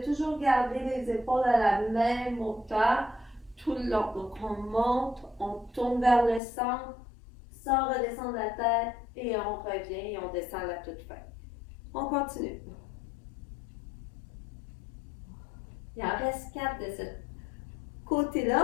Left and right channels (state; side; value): drops out; right; at 6.4 s